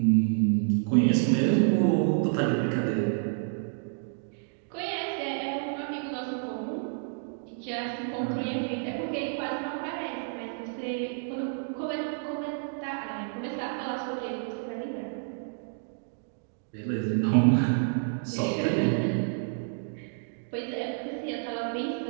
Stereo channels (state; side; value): silent; left; digital silence